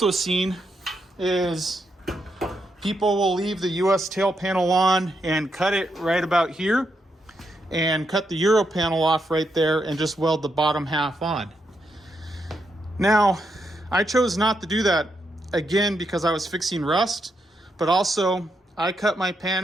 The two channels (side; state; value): both; normal; correlation 0.81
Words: seen is people will leave the US tail panel on and cut it right about here and cut the Euro panel off right there and just weld the bottom half on. Now, I chose not to do that, again, because I was fixing rust, but also I cut my